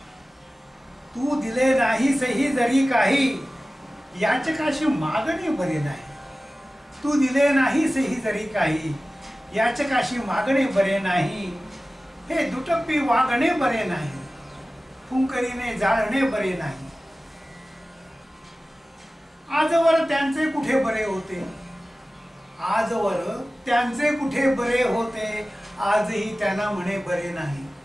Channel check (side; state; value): both; normal; correlation 0.96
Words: तू दिले नाहीस ही जरी काही याचकाशी मागणे बरे नाही. तू दिले नाहीस ही जरी काही याचकाशी मागणे बरे नाही. हे दुटप्पी वागणे बरे नाही, फुंकरीने जाळणे बरे नाही. आजवर त्यांचे कुठे बरे होते, आजवर त्यांचे कुठे बरे होते, आजही त्यांना म्हणे बरे नाही.